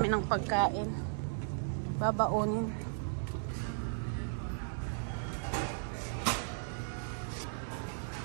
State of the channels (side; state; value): left; silent; 54 dB below the other